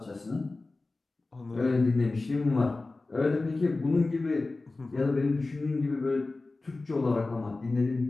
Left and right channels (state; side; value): quieter; right; 3.3 dB